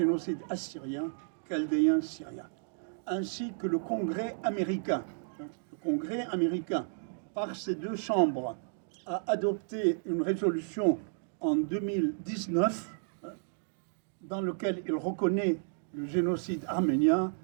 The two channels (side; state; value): left; silent; digital silence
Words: assyrien, chaldéen, syrien. Ainsi que le Congrès américain. Le Congrès américain, par ses deux chambres, a adopté une résolution en 2019 dans laquelle il reconnaît le génocide arménien